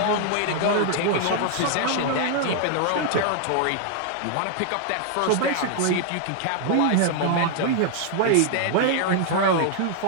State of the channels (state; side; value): different; both; correlation 0.00